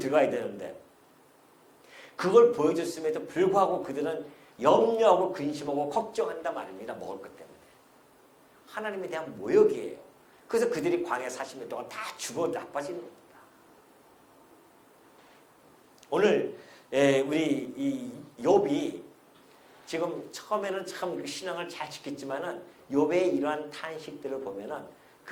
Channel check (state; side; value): identical; both; correlation 1.00